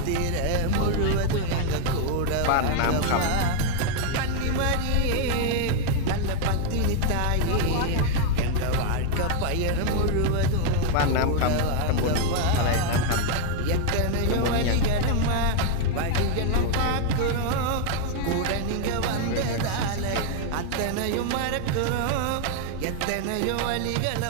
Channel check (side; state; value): both; different; correlation 0.00